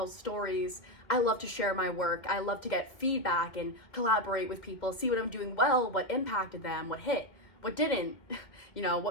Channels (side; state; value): right; late; 2.3 ms